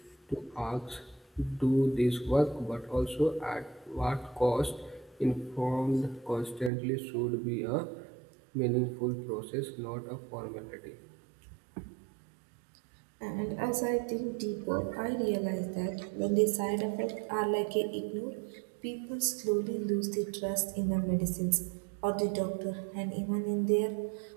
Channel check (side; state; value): left; drops out; at 6.7 s